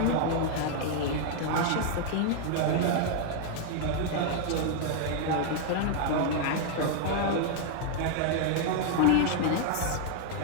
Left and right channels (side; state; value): both; different; correlation 0.00